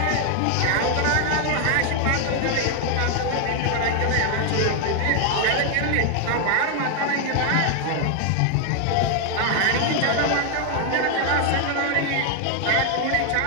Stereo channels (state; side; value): different; both; correlation 0.00